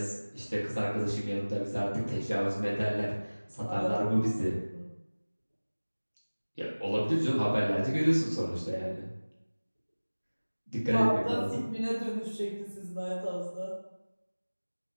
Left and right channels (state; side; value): inverted; both; correlation -1.00